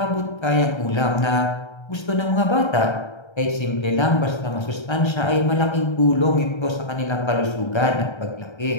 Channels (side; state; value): right; late; 1.3 ms